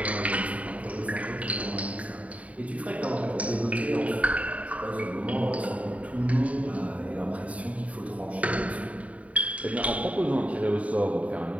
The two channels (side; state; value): left; late; 0.068 ms